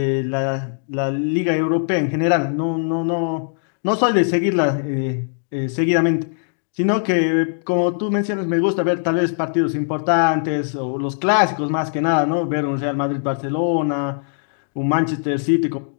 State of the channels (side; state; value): right; silent; digital silence